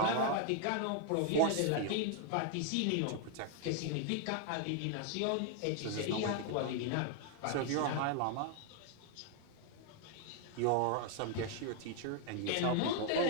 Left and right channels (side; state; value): both; different; correlation 0.00